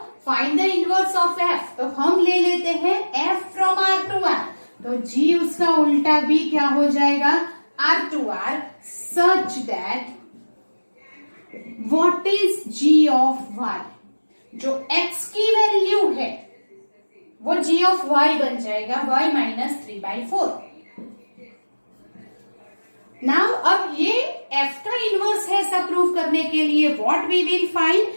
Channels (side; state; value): both; inverted; correlation -1.00